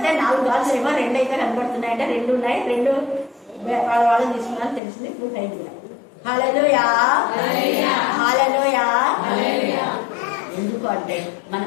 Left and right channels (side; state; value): right; drops out; at 4.8 s